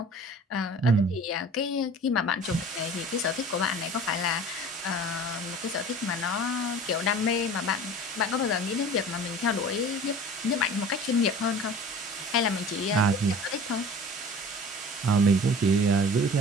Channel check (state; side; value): normal; both; correlation 0.42